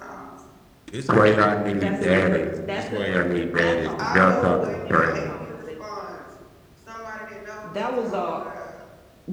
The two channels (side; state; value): both; identical; correlation 1.00